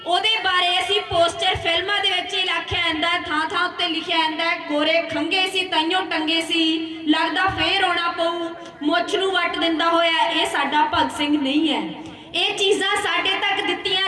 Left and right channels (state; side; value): identical; both; correlation 1.00